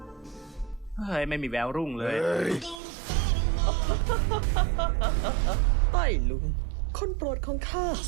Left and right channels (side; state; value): left; drops out; at 2.8 s